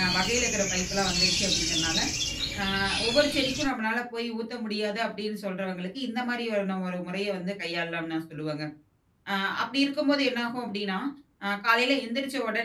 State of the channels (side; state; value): both; identical; correlation 1.00